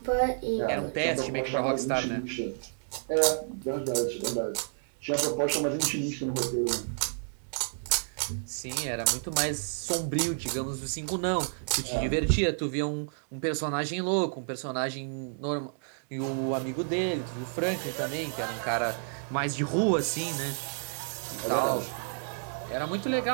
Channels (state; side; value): silent; left; 58 dB below the other